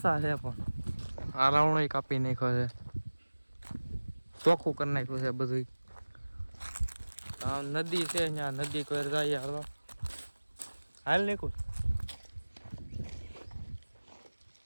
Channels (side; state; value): both; inverted; correlation -1.00